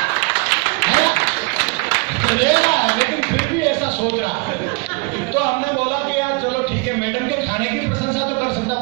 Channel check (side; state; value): left; quieter; 30.4 dB